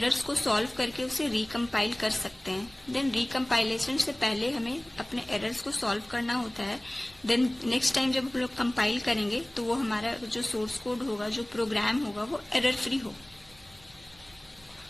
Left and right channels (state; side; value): noise; right; hum, 27 dB below the sound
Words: को सॉल्व करके उसे रिकम्पाइल कर सकते हैं. देन रिकम्पाइलेशन से पहले हमें अपने एरर्स को सॉल्व करना होता है. देन नेक्स्ट टाइम जब हम लोग कंपाइल करेंगे तो वो हमारा जो सोर्स कोड होगा, जो प्रोग्राम होगा, वो एरर फ्री हो.